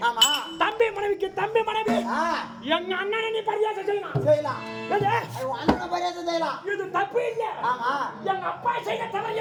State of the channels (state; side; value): identical; both; correlation 1.00